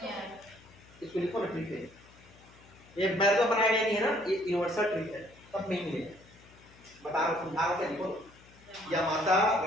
आया। इसको लिखो ना ट्रिक है ये मैंने तो बनाया गया नहीं है ना ये यूनिवर्सल ट्रिक है सब में ही मिलेगा बता रहा हूँ समझा रहा हूँ लिखो या माता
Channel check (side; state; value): left; noise; hum, 25 dB below the sound